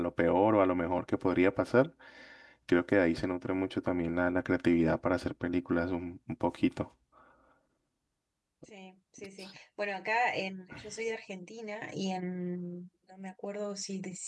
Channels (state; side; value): identical; both; correlation 1.00